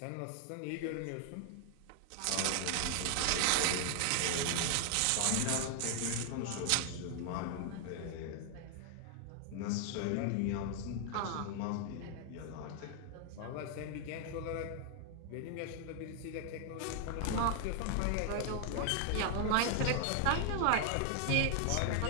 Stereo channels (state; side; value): different; both; correlation 0.00